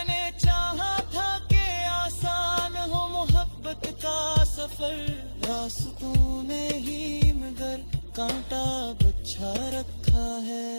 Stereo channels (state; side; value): inverted; both; correlation -1.00